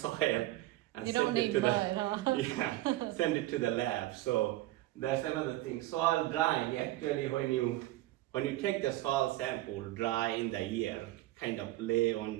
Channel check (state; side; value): quieter; left; 16.8 dB